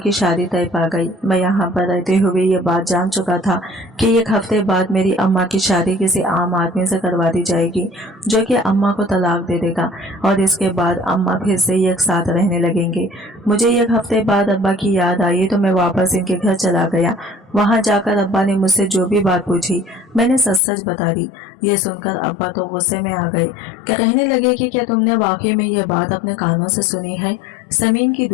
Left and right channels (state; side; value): drops out; right; at 20.6 s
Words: शादी तय पा गई। मैं यहाँ पर रहते हुए ये बात जान चुका था कि 1 हफ्ते बाद मेरी अम्मा की शादी किसी आम आदमी से करवा दी जाएगी, जो कि अम्मा को तलाक दे देगा, और इसके बाद अम्मा फिर से एक साथ रहने लगेंगे। मुझे 1 हफ्ते बाद अब्बा की याद आई तो मैं वापस इनके घर चला गया। वहां जाकर अब्बा ने मुझसे जो भी बात पूछी मैंने सच सच बता दी। ये सुनकर अब्बा तो गुस्से में आ गए। कहने लगे कि क्या तुमने वाकई में ये बात अपने कानों से सुनी है? समीन की